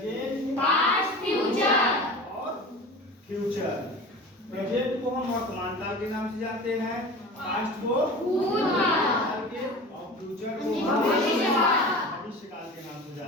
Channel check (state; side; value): normal; both; correlation 0.36